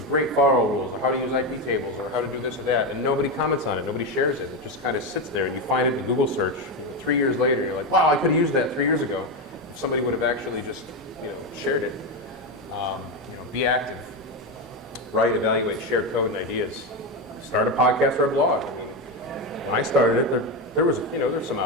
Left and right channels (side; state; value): both; normal; correlation 0.12